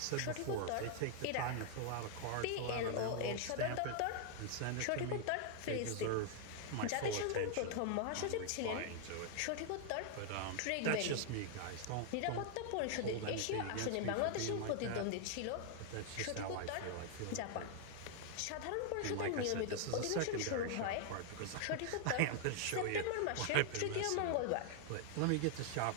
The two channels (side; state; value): both; different; correlation 0.00